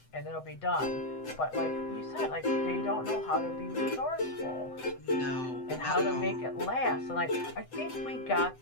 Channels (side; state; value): right; late; 7.9 ms